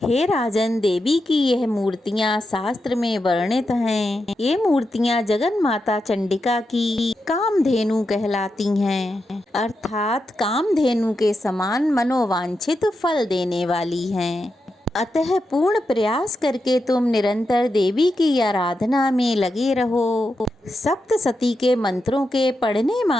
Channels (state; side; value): normal; both; correlation 0.87